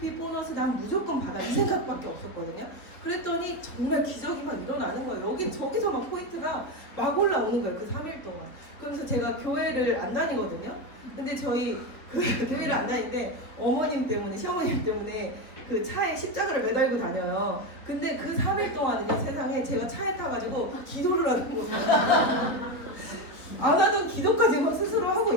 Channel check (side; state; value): right; late; 3.7 ms